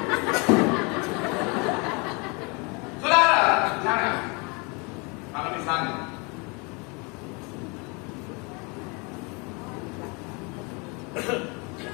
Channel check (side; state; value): right; quieter; 30.5 dB